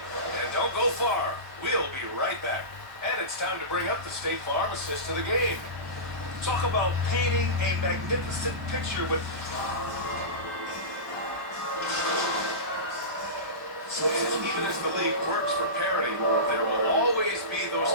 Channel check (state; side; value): late; left; 1.2 ms